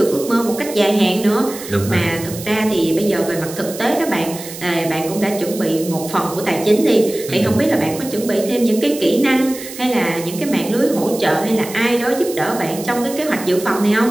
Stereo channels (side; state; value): right; noise; hiss, 12 dB below the sound